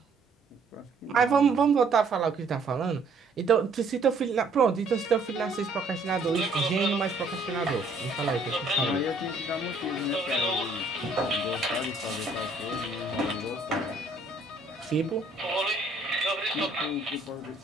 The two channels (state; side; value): quieter; left; 3.2 dB